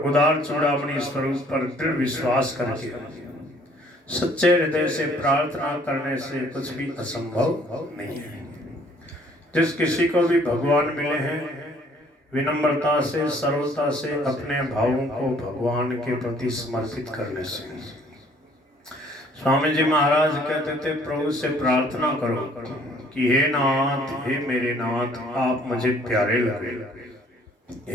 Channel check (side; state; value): both; normal; correlation 0.59